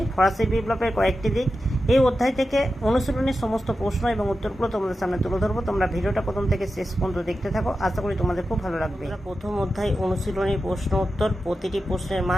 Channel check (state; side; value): normal; both; correlation 0.91